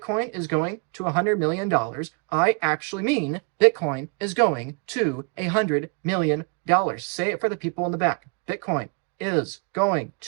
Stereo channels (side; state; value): left; quieter; 36.2 dB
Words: is going to $100 million, I actually mean Bitcoin is going to $100 million. Say it for the people in the back. Bitcoin is going